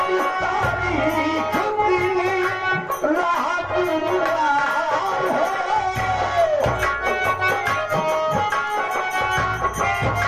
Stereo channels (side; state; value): both; identical; correlation 1.00